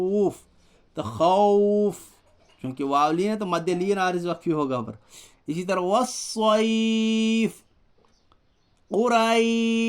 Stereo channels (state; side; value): identical; both; correlation 1.00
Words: تو خوف چونکہ واو لین ہے تو مد لین عارض وقفی ہوگا پر. اسی طرح والصیف،